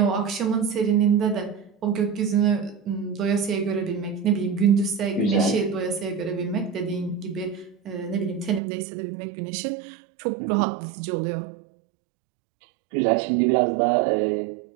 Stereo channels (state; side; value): drops out; left; at 8.6 s